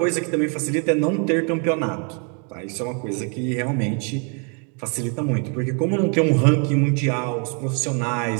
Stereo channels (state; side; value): quieter; left; 38.5 dB